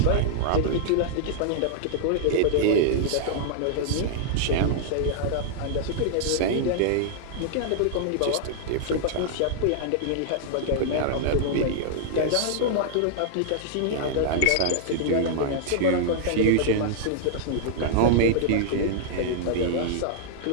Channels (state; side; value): different; both; correlation -0.01